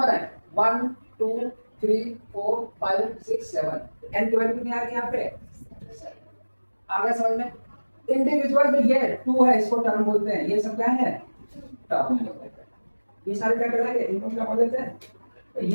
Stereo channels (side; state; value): both; inverted; correlation -1.00